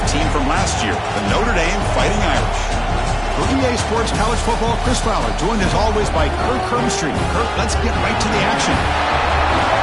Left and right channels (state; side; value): identical; both; correlation 1.00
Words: team from last year, the Notre Dame Fighting Irish. For EA Sports College Football, Chris Fowler, joined as always by Kirk Hermstreet. Kirk, let's get right to the action.